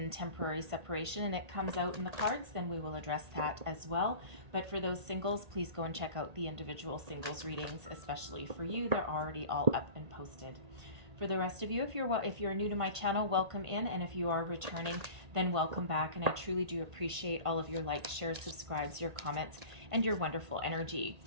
temporary separation and it comes out in the cards, then we will address that as well. But for those singles, please go and check out the individual singles readings, especially for you. They're already all up and posted. For the rest of you, if you're new to my channel, welcome in, and if you are returning, then welcome back. And I truly do appreciate all of your likes, shares, subscribes, your comments, and your wonderful energy.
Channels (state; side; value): late; left; 1.8 ms